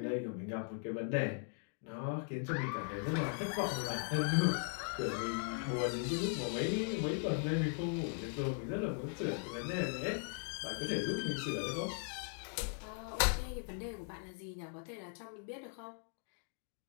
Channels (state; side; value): silent; right; 52 dB below the other